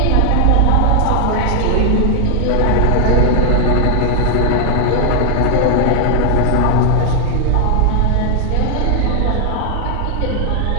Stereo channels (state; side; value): different; both; correlation 0.00